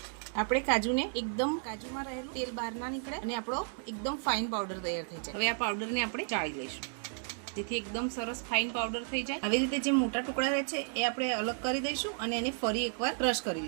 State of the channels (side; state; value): left; silent; 56 dB below the other